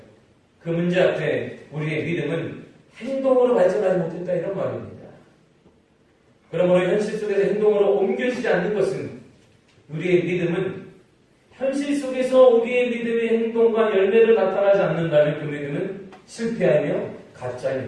그 문제 앞에 우리의 믿음은 행동으로 발전하지 못했다 이런 말입니다. 그러므로 현실 속에서 행동으로 옮겨지지 않는 것은 우리의 믿음은 현실 속에서 우리의 믿음의 행동과 열매를 나타나지 않는다면 그 믿음은 실패하며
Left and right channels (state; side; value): identical; both; correlation 1.00